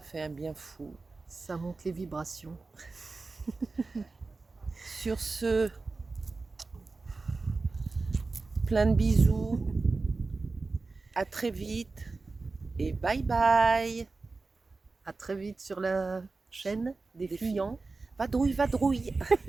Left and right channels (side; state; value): left; quieter; 3.8 dB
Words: fait un bien fou. Ça monte les vibrations. Sur ce, plein de bisous, à très vite et bye bye. À très vite sur la chaîne des Fuyants. Vadrouille, vadrouille.